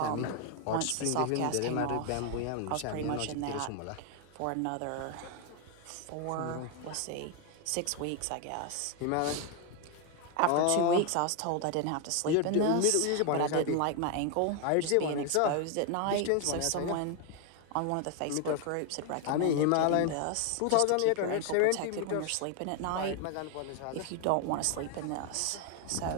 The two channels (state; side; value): different; both; correlation 0.01